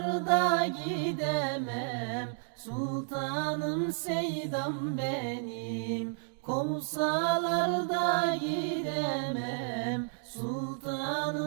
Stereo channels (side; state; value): left; silent; digital silence